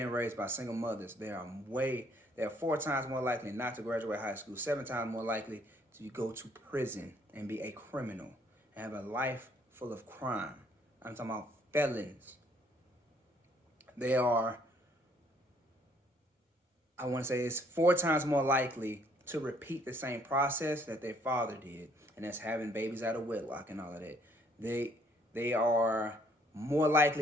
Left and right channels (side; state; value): both; normal; correlation 0.64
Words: raised by single mothers, they are 4 times more likely not to graduate high school, 7 times more likely to go to prison and be a criminal and have a life full of crime. I'm talking about felons. They are, I want to say it's 4 times more likely to repeat the same process that their father did, and that's having babies out of wedlock and all of that. They are more